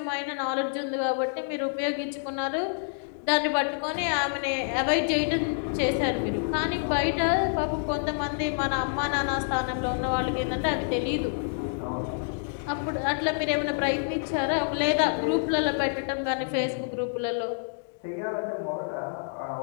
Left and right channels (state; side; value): silent; right; digital silence